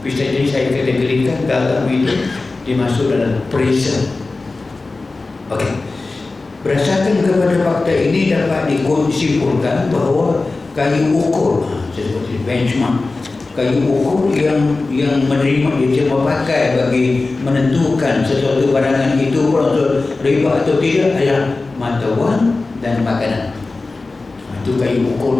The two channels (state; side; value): quieter; right; 3.5 dB